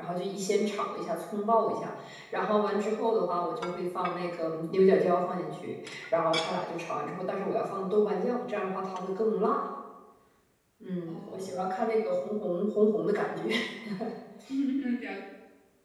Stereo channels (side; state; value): both; identical; correlation 1.00